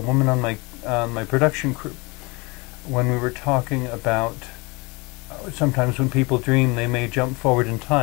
on my production crew when we were talking about sometimes when people dream, they may jump forward in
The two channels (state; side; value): quieter; right; 26.7 dB